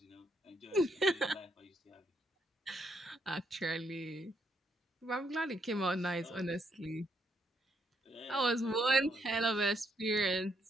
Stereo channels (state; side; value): normal; both; correlation 0.75